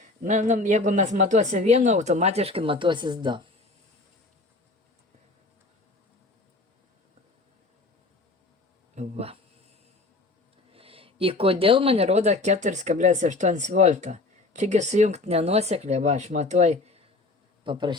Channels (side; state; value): right; quieter; 3.2 dB